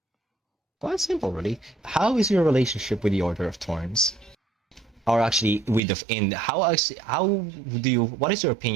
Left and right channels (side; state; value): left; drops out; at 5.8 s